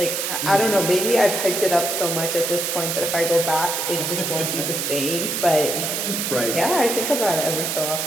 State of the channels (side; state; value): right; noise; hiss, 1 dB below the sound